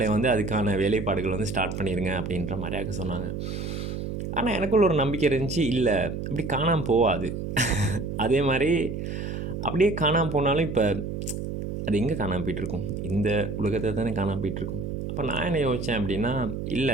வந்து அதுக்கான வேலைப்பாடுகள் வந்து ஸ்டார்ட் பண்ணிடுங்க அப்படின்ற மாதிரியாக சொன்னாங்க. ஆனால் எனக்குள்ள ஒரு நம்பிக்கை இருந்துச்சு, இல்லை அப்படி காணாமல் போகாது. அதே மாதிரி அப்படியே காணாமல் போனாலும் இப்போ அது எங்கே காணாமல் போயிட்டுருக்கும்? இந்த உலகத்தை தானே காணாமல் போயிட்டுருக்கும். அப்போ நான் என்ன யோசித்தேன் அப்படின்னா, இல்லை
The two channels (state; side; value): noise; right; hum, 5 dB below the sound